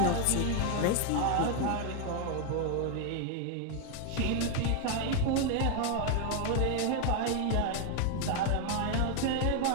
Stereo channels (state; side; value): different; both; correlation 0.00